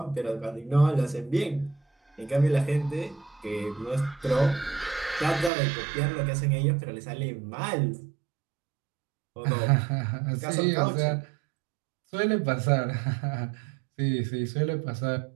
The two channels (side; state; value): left; drops out; at 5.5 s